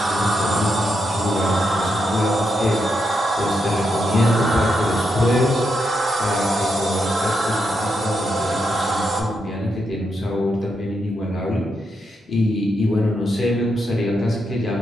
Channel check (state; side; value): normal; both; correlation 0.82